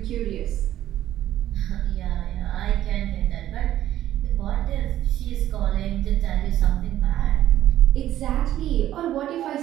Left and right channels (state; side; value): quieter; left; 12.7 dB